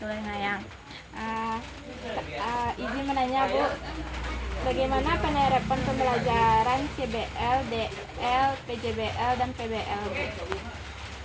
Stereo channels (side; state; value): both; identical; correlation 1.00